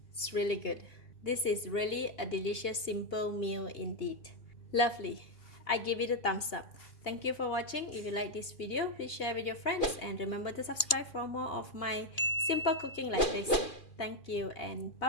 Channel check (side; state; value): right; late; 2.4 ms